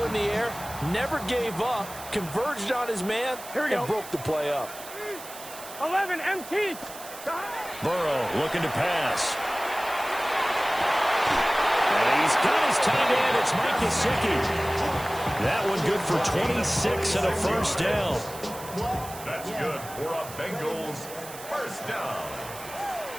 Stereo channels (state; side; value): noise; right; hiss, 14 dB below the sound